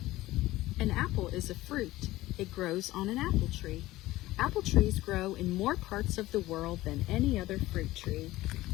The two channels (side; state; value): right; quieter; 17.2 dB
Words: An apple is a fruit. It grows on an apple tree. Apple trees grow in more parts of the world than any other fruit tree.